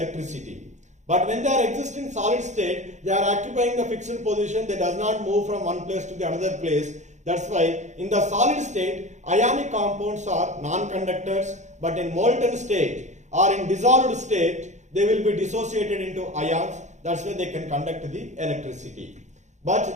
But when they are existing solid state, they are occupying the fixed position. They does not move from one place to the another place. That's why in the solid state, ionic compounds are non-conductors, but in molten state or in dissolved state, they will be dissociated into ions. That's why they can conduct the electricity.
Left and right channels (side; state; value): left; late; 0.34 ms